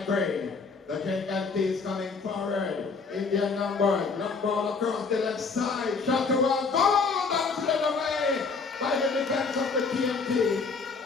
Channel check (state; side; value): quieter; right; 4.7 dB